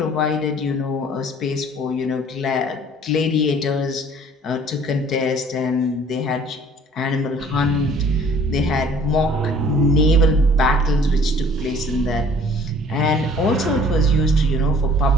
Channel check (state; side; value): normal; both; correlation 0.53